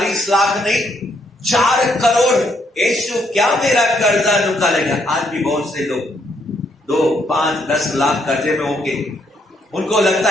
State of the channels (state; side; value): normal; both; correlation 0.73